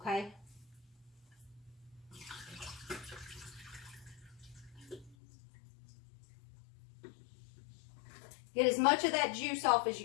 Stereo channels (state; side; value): drops out; right; at 5.2 s